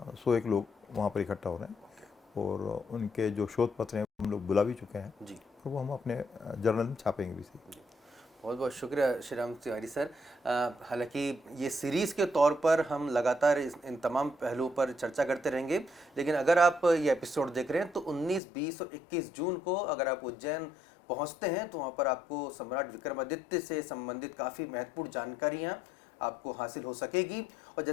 101 लोग वहाँ पर इकट्ठा हो रहे हैं, और उनके जो शोध पत्र हैं हम लोग बुला भी चुके हैं, और वो हम अपने जर्नल में छापेंगे भी। बहुत बहुत शुक्रिया श्री राम तिवारी सर। हालांकि ये सीरीज़ के तौर पर हम लगातार इन तमाम पहलुओं पर चर्चा करते रहेंगे, लेकिन अगर आप ये एपिसोड देख रहे हैं तो 19, 20 और 21 जून को अगर आप उज्जैन पहुंचते हैं तो वहां पर आपको सम्राट विक्रमादित्य से संबंधित काफ़ी महत्वपूर्ण जानकारियाँ आपको हासिल हो सकेगी। और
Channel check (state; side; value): drops out; right; at 18.4 s